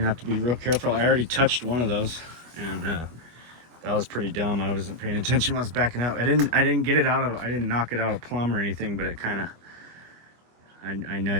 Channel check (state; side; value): late; left; 25 ms